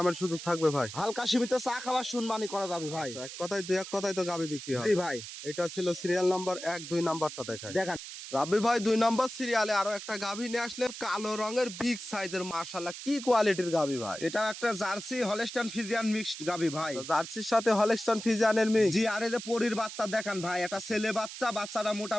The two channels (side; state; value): right; noise; hiss, 10 dB below the sound